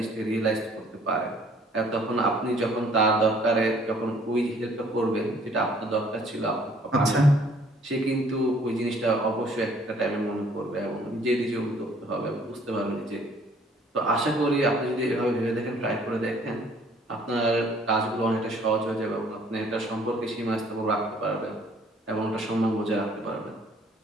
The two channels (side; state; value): both; normal; correlation 0.59